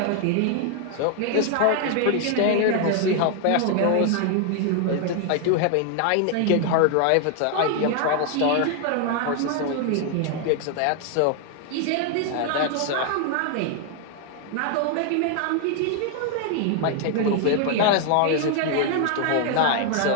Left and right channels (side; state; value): both; different; correlation 0.00